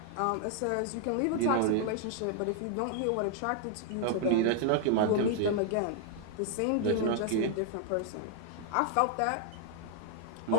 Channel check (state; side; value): different; both; correlation 0.00